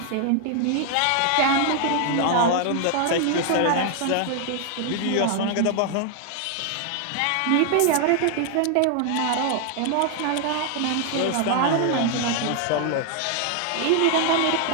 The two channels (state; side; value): different; both; correlation 0.00